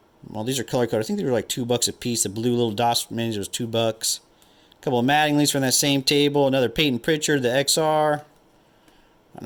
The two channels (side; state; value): both; identical; correlation 1.00